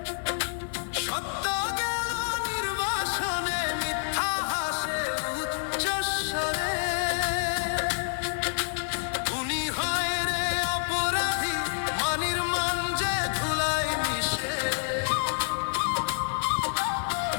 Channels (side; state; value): right; silent; 59 dB below the other